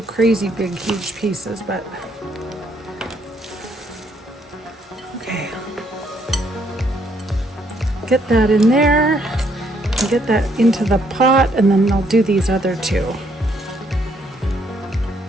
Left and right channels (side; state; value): both; normal; correlation 0.70